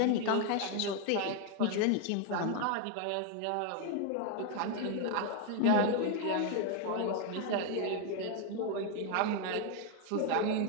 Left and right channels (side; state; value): both; different; correlation 0.01